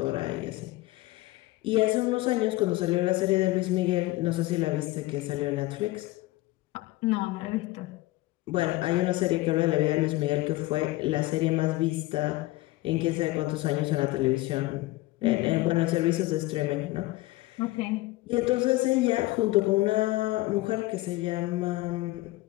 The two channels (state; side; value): quieter; right; 19.2 dB